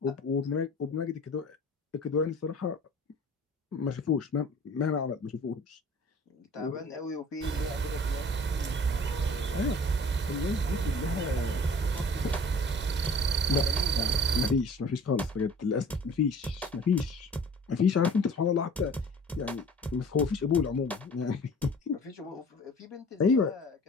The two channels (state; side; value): normal; both; correlation 0.46